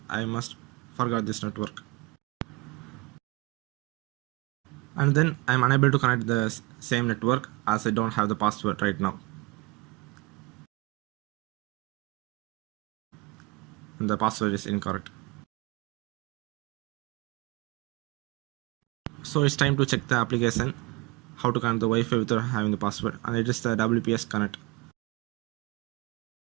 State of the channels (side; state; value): left; quieter; 22.3 dB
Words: I must forget this network. And then I'm unable to connect the same network as I don't have the password right now. And the password is incorrect. So it's time to check the application, how to connect the Wi-Fi without having the password, and it is the WPS connect.